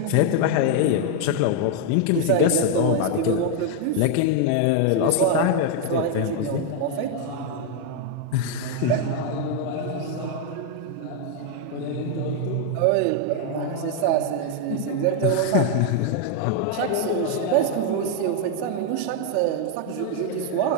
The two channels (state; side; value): different; both; correlation 0.01